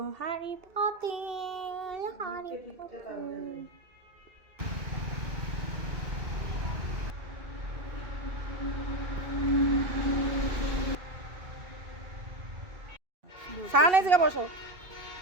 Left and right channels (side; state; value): left; late; 2.7 ms